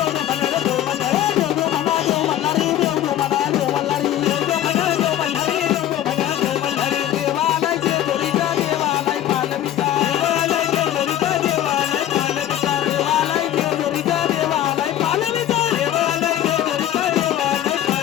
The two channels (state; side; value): quieter; right; 11.9 dB